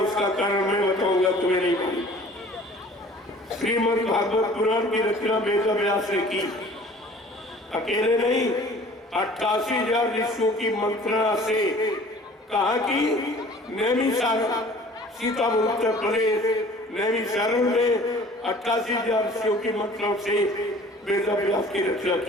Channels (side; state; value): both; normal; correlation 0.49